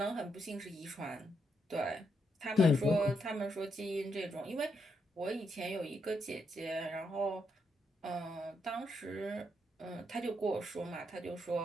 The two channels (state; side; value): normal; both; correlation 0.79